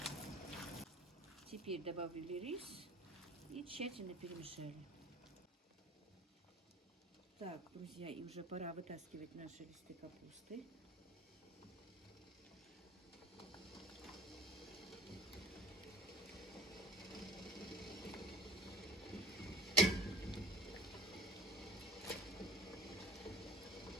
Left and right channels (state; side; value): normal; both; correlation 0.41